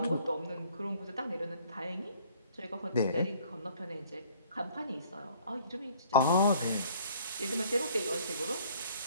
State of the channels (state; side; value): inverted; both; correlation -0.57